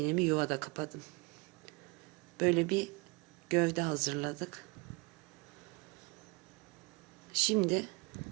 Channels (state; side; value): quieter; left; 27.8 dB